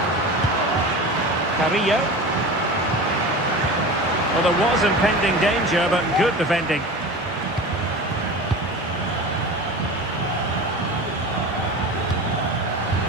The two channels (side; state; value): both; normal; correlation 0.32